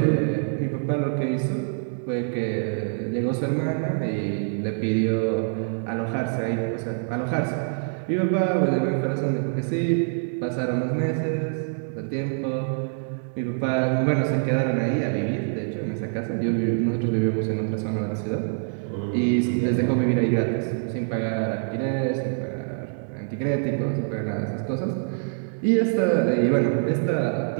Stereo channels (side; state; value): left; silent; digital silence